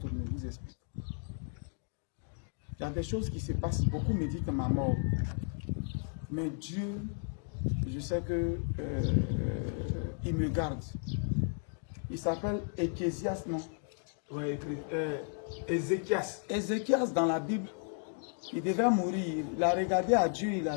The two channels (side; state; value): right; silent; 55 dB below the other